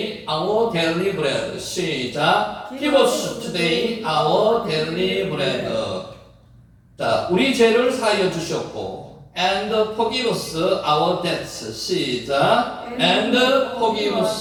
our daily bread. 시작. Give us today our daily bread. 자, 우리 죄를 사하여 주셨고 And forgive us our debts. 시작. And forgive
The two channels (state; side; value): identical; both; correlation 1.00